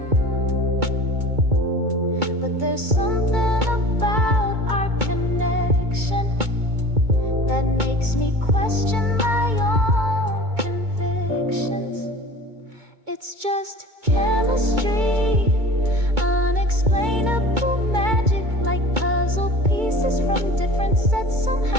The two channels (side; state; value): left; late; 2.2 ms